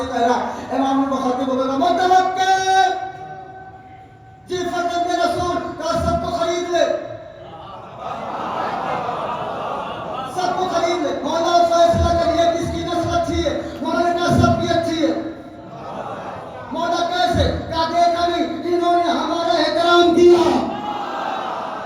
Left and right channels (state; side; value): identical; both; correlation 1.00